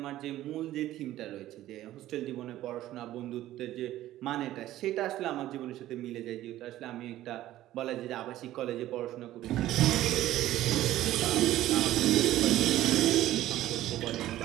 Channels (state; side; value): quieter; left; 14.3 dB